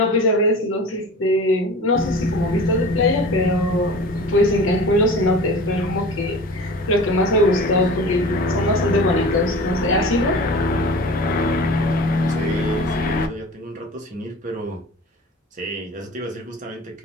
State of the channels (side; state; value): both; normal; correlation 0.38